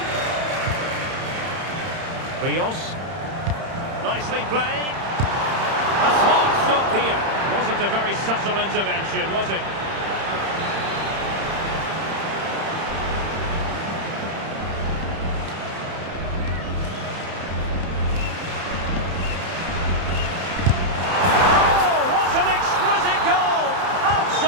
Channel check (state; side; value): late; left; 31 ms